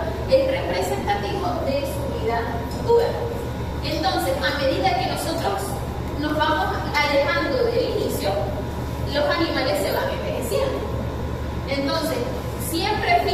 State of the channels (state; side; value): identical; both; correlation 1.00